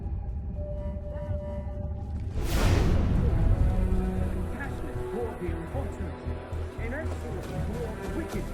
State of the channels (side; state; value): both; identical; correlation 1.00